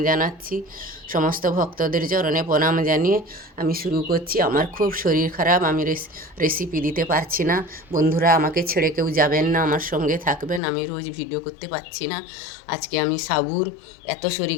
জানাচ্ছি, সমস্ত ভক্তদের চরণে প্রণাম জানিয়ে আমি শুরু করছি। আমার খুব শরীর খারাপ, আমি রেসিপি দিতে পারছি না। বন্ধুরা আমাকে ছেড়ে কেউ যাবেন না, আমার সঙ্গে থাকবেন। আমি রোজ ভিডিও করতে পারছি না। আজকে আমি সাবুর, এত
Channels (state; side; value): drops out; right; at 10.6 s